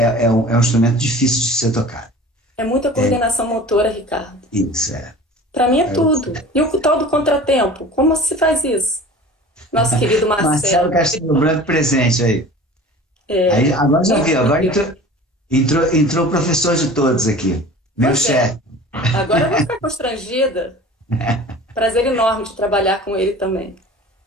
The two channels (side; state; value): both; normal; correlation 0.41